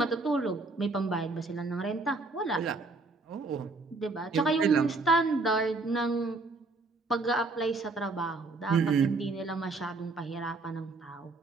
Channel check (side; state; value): left; quieter; 3.5 dB